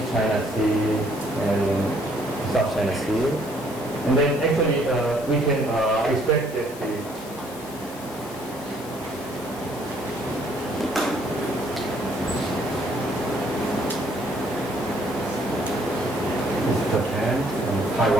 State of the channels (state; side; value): noise; left; hiss, 17 dB below the sound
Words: China Sea and South China Sea. And then actually we can expect that the Japan and